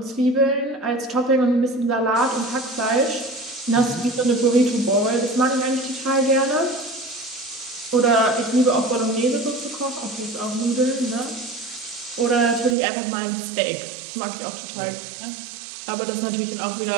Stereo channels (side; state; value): left; drops out; at 12.8 s